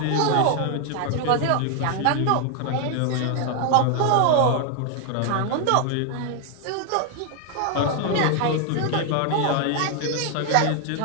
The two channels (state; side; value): different; both; correlation 0.00